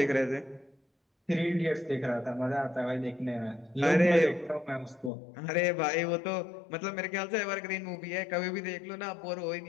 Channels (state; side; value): drops out; right; at 5.1 s